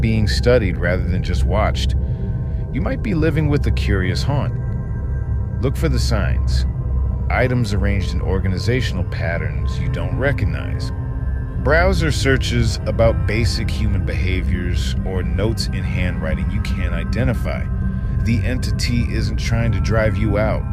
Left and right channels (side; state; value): both; identical; correlation 1.00